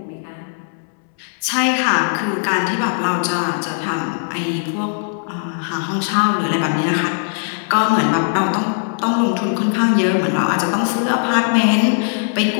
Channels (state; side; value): silent; right; digital silence